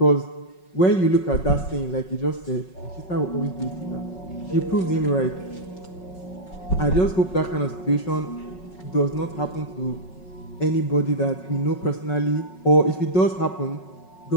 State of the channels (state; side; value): late; right; 5.4 ms